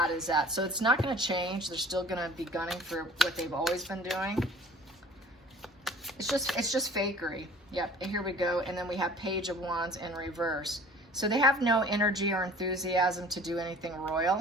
is that. So it's not going to change. They're still going to be gunning for what they've always been doing. It's just fakery. Yep, and here we go. And then we have Page of Wands in reverse. So they have no energy or enthusiasm to do anything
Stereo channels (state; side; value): normal; both; correlation 0.48